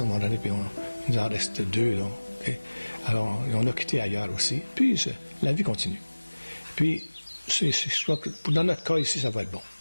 un moment donné, puis il nous en reste 2. Là, okay? Alors, on a quitté ailleurs aussi. Puis, la vie continue. Puis, je crois que dans notre cas ici, ça va être bon.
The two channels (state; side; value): inverted; both; correlation -1.00